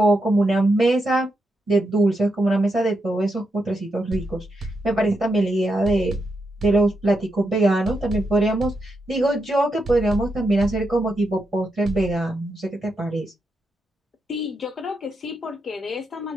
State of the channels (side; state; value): both; normal; correlation 0.83